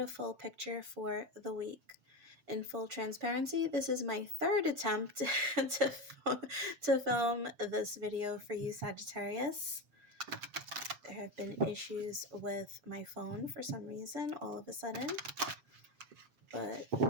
full picture for the week. In full transparency, this is my third attempt to film this video for you, Sagittarius. There have been issues with my phone for some reason all of a sudden, but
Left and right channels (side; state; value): left; late; 7.4 ms